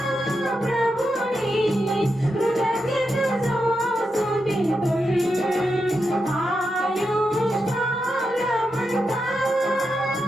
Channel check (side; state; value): both; normal; correlation 0.86